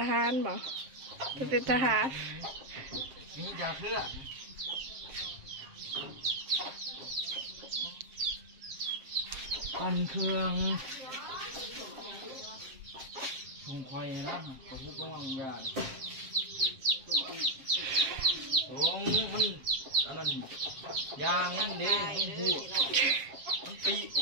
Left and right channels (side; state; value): left; late; 7.5 ms